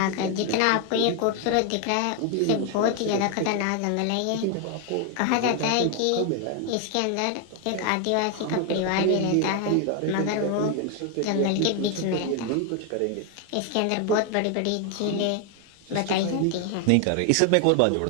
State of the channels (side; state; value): both; different; correlation 0.01